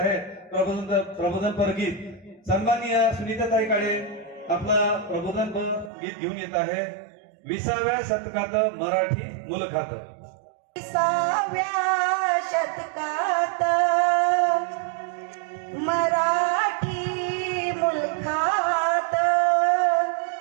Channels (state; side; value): drops out; left; at 5.9 s